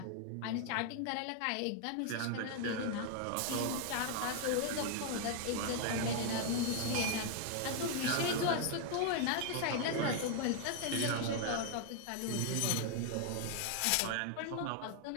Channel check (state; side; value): different; both; correlation 0.00